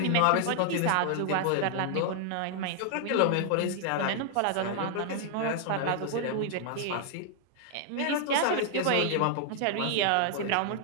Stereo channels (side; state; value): both; different; correlation 0.00